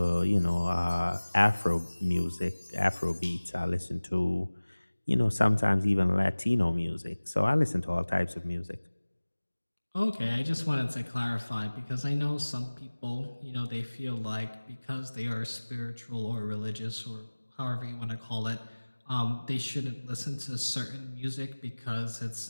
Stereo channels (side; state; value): both; inverted; correlation -1.00